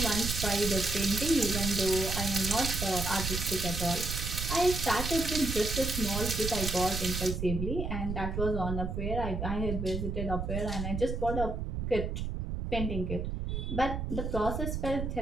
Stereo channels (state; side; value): noise; right; rumble, 3 dB below the sound